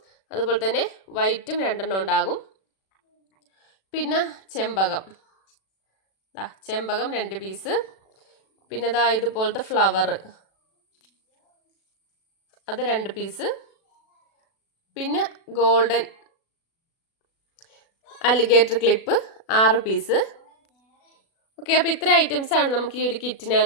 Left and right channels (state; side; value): late; right; 36 ms